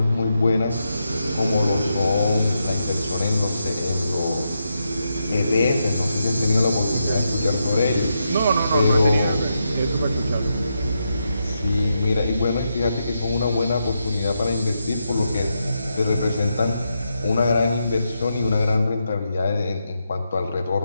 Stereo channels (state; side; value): inverted; both; correlation -0.84